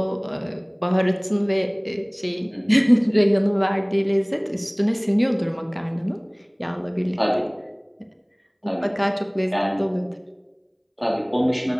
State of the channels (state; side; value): identical; both; correlation 1.00